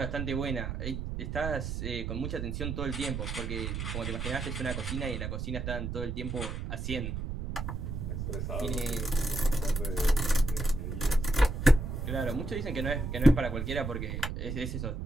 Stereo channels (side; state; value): right; noise; rumble, 4 dB below the sound